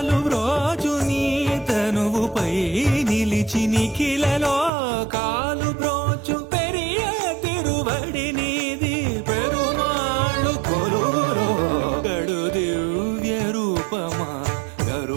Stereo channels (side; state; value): left; drops out; at 4.7 s